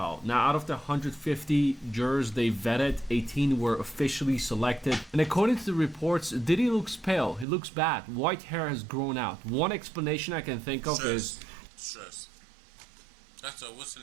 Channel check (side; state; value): left; drops out; at 7.5 s